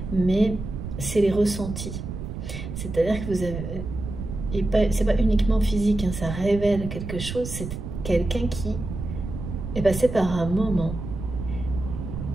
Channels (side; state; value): right; noise; rumble, 7 dB below the sound